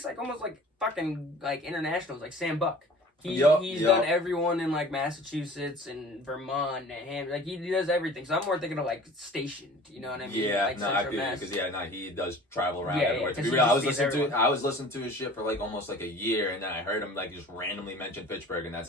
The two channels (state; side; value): normal; both; correlation 0.44